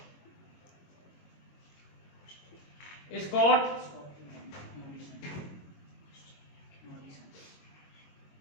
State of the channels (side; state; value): right; late; 22 ms